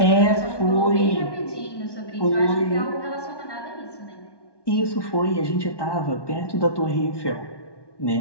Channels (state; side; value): late; right; 1.1 ms